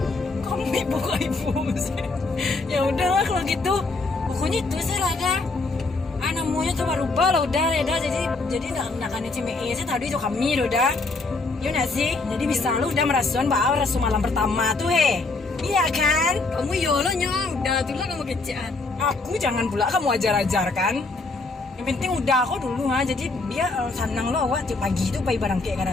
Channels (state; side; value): quieter; right; 3.6 dB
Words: Kamu ibu sih. Ya udahlah kalau gitu. Pokoknya itu sih lah dah. Namanya tuh berubah lah udah jadi nak cime saya tadi itu kami udah. Iya nggak sih? Jadi bisa lu udah merasakan bahwa rasu malam pertama tuh iya kan? Kamu lo nya udah tuh lah kamu kecian. Aku jangan pula kamu ajar-ajar kan. Yang penting udah aku dulu jadi dia senang lo awak tiap pagi itu pagi barang kayak